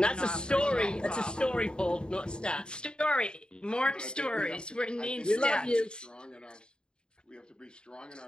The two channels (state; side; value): late; right; 0.049 ms